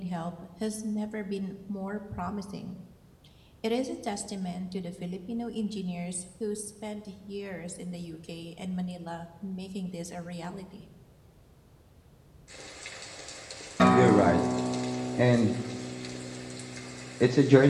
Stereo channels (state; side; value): identical; both; correlation 1.00